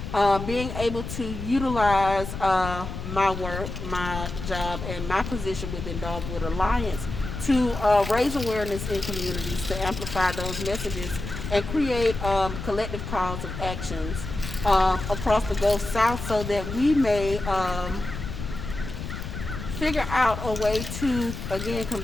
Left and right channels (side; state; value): left; noise; rumble, 7 dB below the sound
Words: being able to utilize my work, my job, and my position within Dogwood Alliance to raise awareness in communities, to amplify those messages, and create collective calls of actions across the Gulf South so that we may figure out a way to, again,